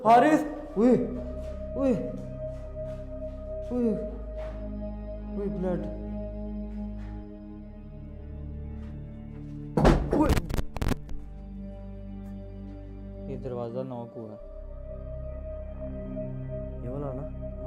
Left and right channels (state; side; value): identical; both; correlation 1.00